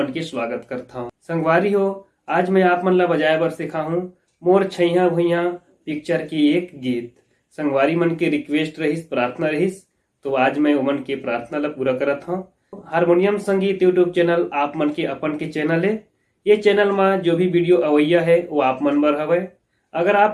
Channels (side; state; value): both; identical; correlation 1.00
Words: के स्वागत करता हूँ। संगवारी हो, आज मैं आप मन ला बजाए बर सिखा हूँ मोर छैया भुइया पिक्चर की एक गीत। संगवारी मन के रिक्वेस्ट रहिस, प्रार्थना रहिस, तो आज मैं उमन के प्रार्थना ला पूरा करत हूँ। हारमोनियम संगीत यूट्यूब चैनल आप मन के अपन के चैनल है। ये चैनल में जो भी वीडियो अवैया है वो आप मन बर हवे। अगर